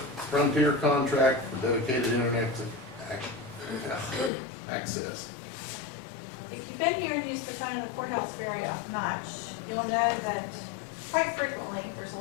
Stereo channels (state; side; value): drops out; right; at 4.3 s